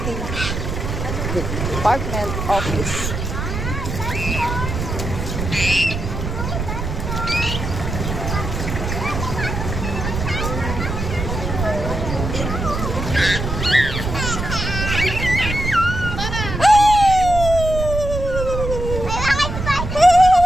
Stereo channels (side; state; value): right; noise; rumble, 4 dB below the sound